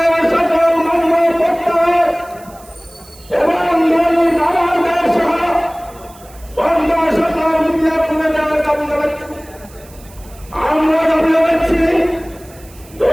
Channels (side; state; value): right; noise; hiss, 24 dB below the sound